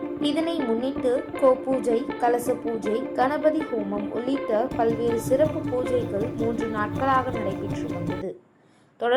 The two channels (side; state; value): both; identical; correlation 1.00